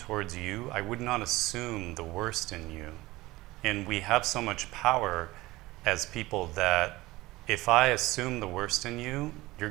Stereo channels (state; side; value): quieter; left; 19.3 dB